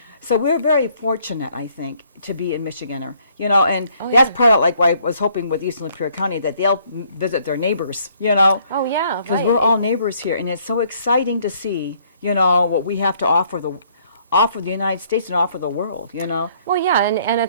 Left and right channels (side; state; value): both; inverted; correlation -0.65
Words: So we're very fortunate, I think, to be a Michiganer, you know, and that's part of like why I was hoping with Eastern Lapeer County that they'll visit their neighbors, you know. Oh, yeah, Because right. we're all neighbors here, and it's so exciting to see, you know, what we have to offer the United States and offer the world, you know. Well, yeah, and